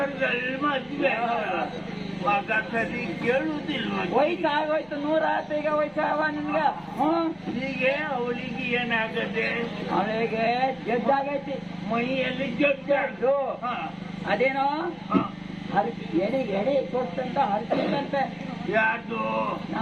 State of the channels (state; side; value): noise; left; rumble, 28 dB below the sound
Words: ಮದುವೆ ಮಗ ಸರಿ ಕೇಳುವುದಿಲ್ಲ. ವಯಸ್ಸಾಗೋಯ್ತು, 100 ಈಗ ವಯಸ್ಸಾವ ನಿನ್ಗ. ಹೀಗೆ ಅವಳಿಗೆ ಏನಾಗದೆ? ಅವಳಿಗೆ ಜಡ್ಡಾಗೈತಿ, ಮೈಯಲ್ಲಿ ಜಡ್ಡು. ಅದೇನೋ ಎಡೆ ಕೊಟ್ಟಂತ ಹರಿಸಿದಂತೆ. ಯಾರು?